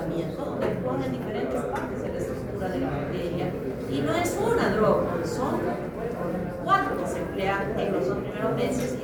donde actúan en diferentes partes de la estructura de la bacteria. Y no es una droga, son 4 que se emplean en los 2 primeros meses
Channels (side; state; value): both; identical; correlation 1.00